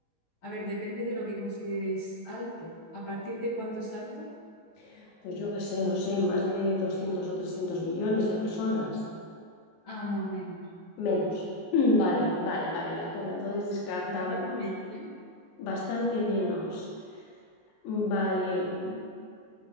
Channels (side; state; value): right; late; 19 ms